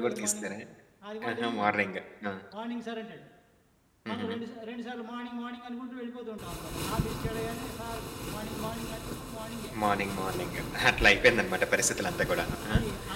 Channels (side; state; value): both; identical; correlation 1.00